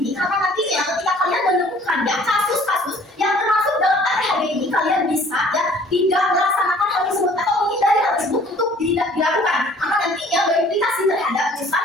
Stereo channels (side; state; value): both; normal; correlation 0.54